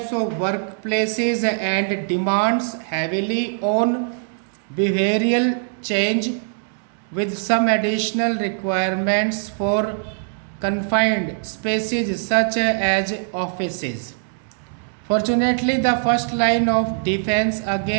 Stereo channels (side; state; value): left; silent; digital silence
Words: of workplaces and demands heavily on behavioral change with some additional requirements for confined spaces such as offices. Fortunately, the first line of defense